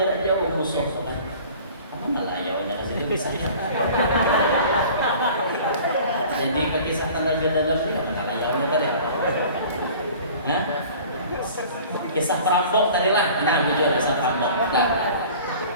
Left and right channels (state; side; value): inverted; both; correlation -0.45